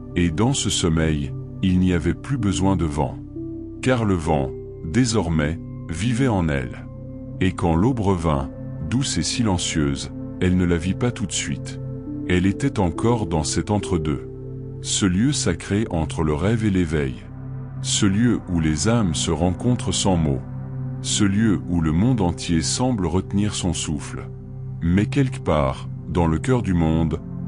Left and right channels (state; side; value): identical; both; correlation 1.00